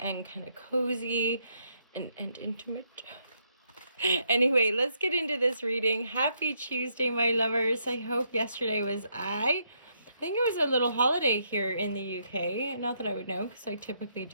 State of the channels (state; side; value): inverted; both; correlation -0.75